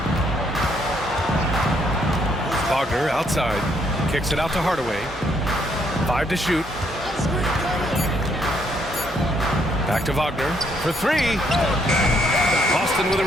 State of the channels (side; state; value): both; normal; correlation 0.71